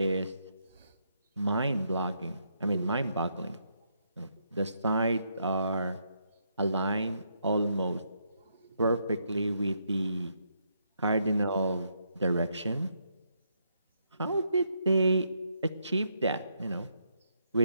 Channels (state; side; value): inverted; both; correlation -0.77